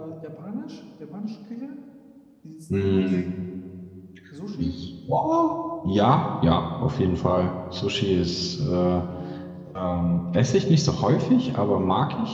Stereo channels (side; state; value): both; identical; correlation 1.00